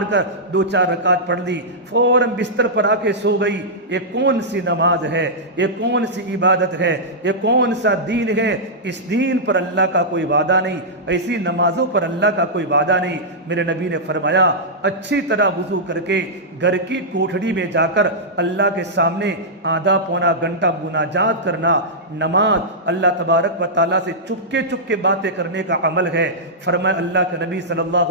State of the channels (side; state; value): both; normal; correlation -0.11